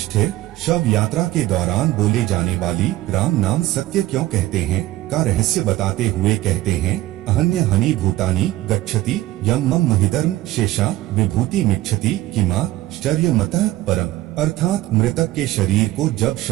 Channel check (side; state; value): left; quieter; 16.3 dB